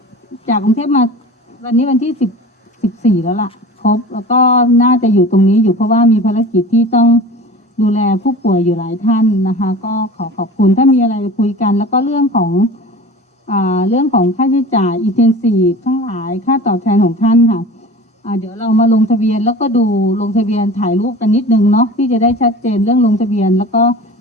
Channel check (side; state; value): both; normal; correlation 0.37